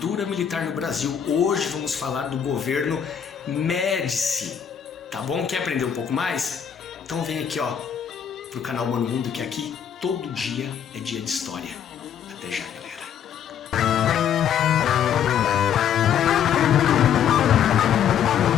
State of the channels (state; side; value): quieter; right; 8.7 dB